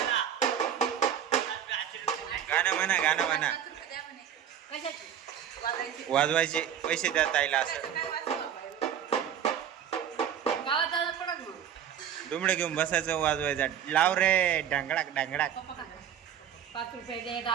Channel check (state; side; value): quieter; left; 9.3 dB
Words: गाणं म्हणा. वाजवायचे पैसे द्या ताईला. असं दुमडं घेऊन बसायचं, वाजवायचं. लाव रे ढंगडाक ढंगडाक. 5 रुपये दे,